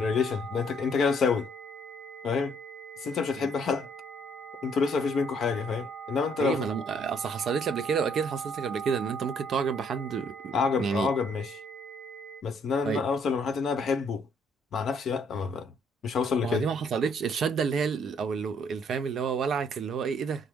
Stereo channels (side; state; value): both; normal; correlation 0.66